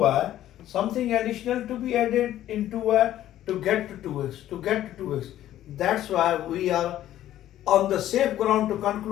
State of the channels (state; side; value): quieter; right; 12.8 dB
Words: Something additional to be added into y to get to 2x. To get to 2x. That's why we are on the safe ground to